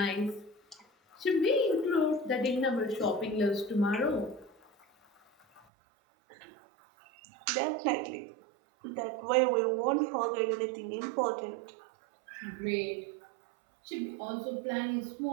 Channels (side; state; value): left; drops out; at 5.7 s